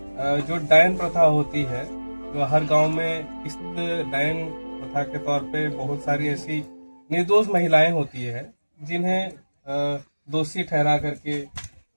जो डायन प्रथा होती है। जो हर गांव में इस डायन प्रथा के तौर पे बहुत सारी ऐसी निर्दोष महिलाएं होती है जिन्हें दोषी ठहरा करके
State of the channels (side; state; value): both; inverted; correlation -1.00